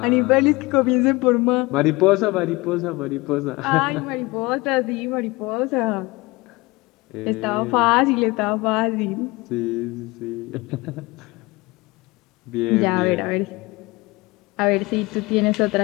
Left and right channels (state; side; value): quieter; right; 22.8 dB